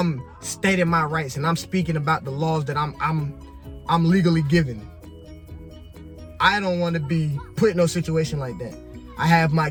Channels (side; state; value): both; identical; correlation 1.00